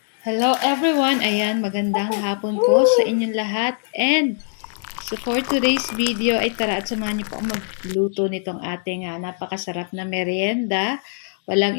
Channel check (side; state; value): right; silent; digital silence